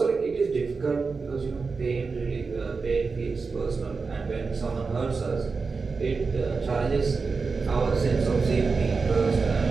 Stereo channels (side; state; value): left; quieter; 4.6 dB